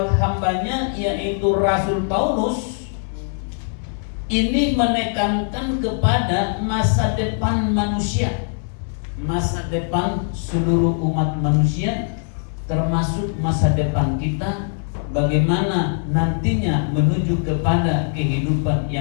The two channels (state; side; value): silent; right; 65 dB below the other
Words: hambanya, yaitu Rasul Paulus. Ini menekankan kepada masa depan manusia, masa depan seluruh umat manusia, termasuk masa depan kita, bagaimana nantinya menuju kepada kehidupan